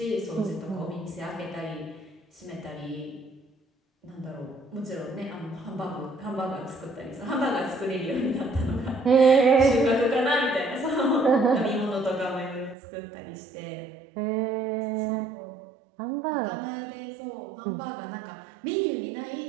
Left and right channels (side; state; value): left; drops out; at 12.8 s